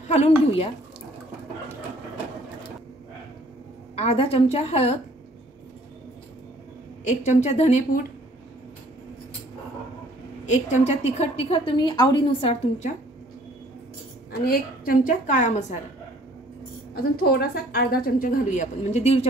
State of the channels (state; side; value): normal; both; correlation 0.57